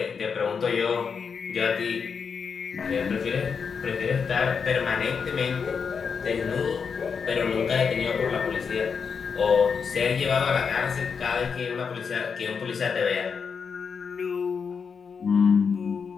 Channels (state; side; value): quieter; right; 6.0 dB